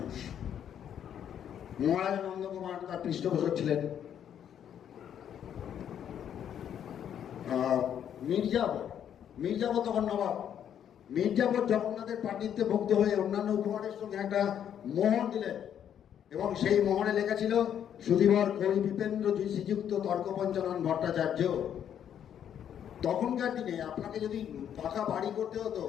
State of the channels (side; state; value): right; quieter; 9.4 dB